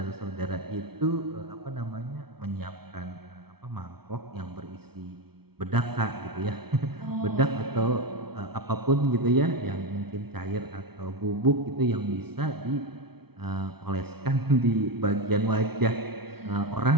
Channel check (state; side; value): late; left; 0.96 ms